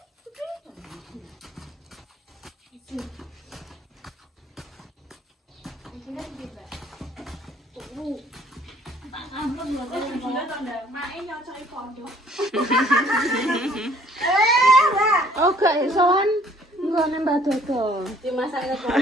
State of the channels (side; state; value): both; normal; correlation 0.59